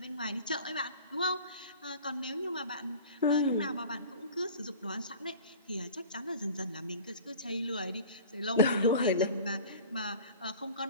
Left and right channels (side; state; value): both; inverted; correlation -0.41